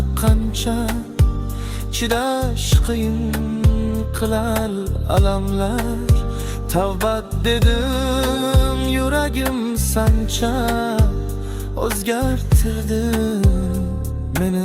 qancha, chidash qiyin qilar alamlar. Tavbat dedim yuragim sancha, o'zgartirdi meni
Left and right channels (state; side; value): identical; both; correlation 1.00